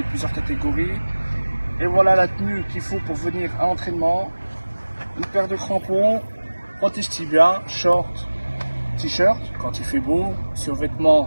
de plusieurs catégories. Et voilà la tenue qu'il faut pour venir à l'entraînement. Une paire de crampons, protège tibia, short, t-shirt quand il fait beau,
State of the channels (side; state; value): both; inverted; correlation -1.00